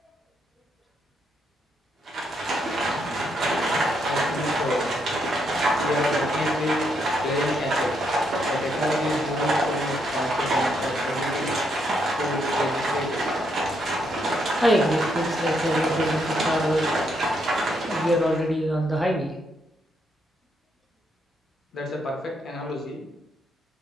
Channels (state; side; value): normal; both; correlation 0.76